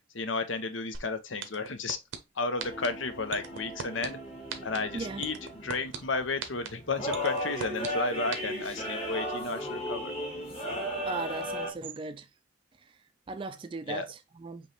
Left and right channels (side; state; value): both; normal; correlation -0.06